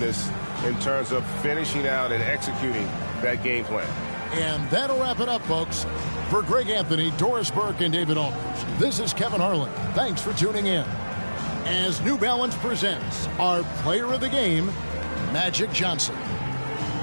in terms of finishing out and executing that game plan. And that'll wrap it up, folks. For Greg Anthony, Doris Burke, and David Aldridge, this is Kevin Harlan. Thanks for tuning in. As New Balance presents our player of the game, Magic Johnson.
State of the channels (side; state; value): both; inverted; correlation -1.00